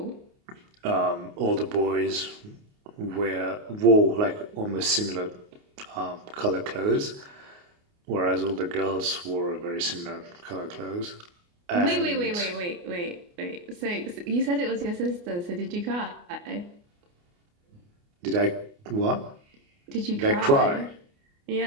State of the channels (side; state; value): left; late; 29 ms